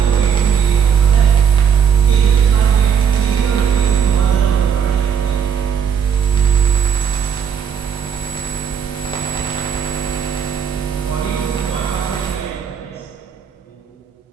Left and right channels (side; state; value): left; quieter; 7.6 dB